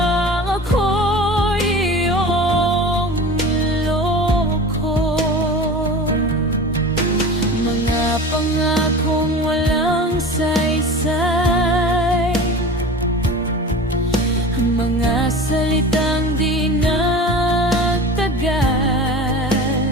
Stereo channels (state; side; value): normal; both; correlation 0.35